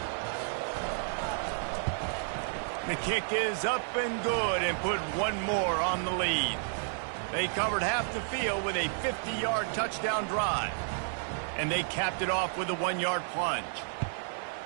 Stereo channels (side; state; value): left; silent; digital silence